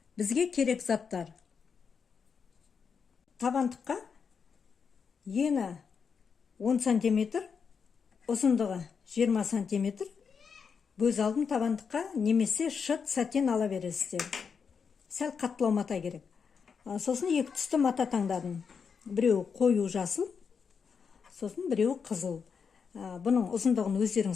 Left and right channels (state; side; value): quieter; right; 6.1 dB